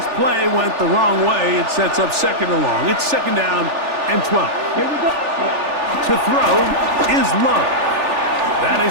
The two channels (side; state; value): left; late; 3.4 ms